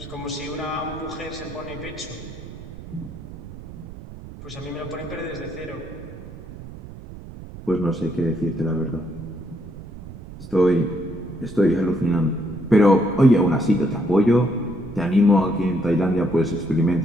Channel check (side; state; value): right; noise; rumble, 14 dB below the sound